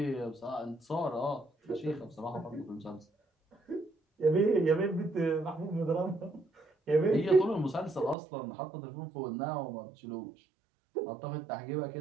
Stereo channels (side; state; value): left; drops out; at 8.2 s